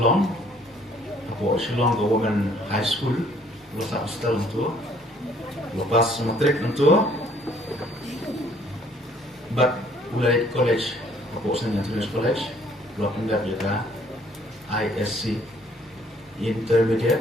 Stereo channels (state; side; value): normal; both; correlation 0.61